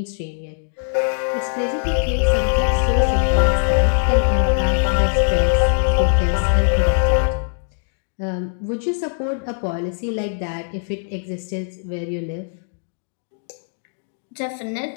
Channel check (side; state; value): right; silent; digital silence